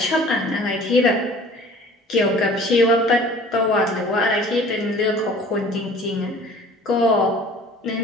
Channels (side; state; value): both; normal; correlation 0.47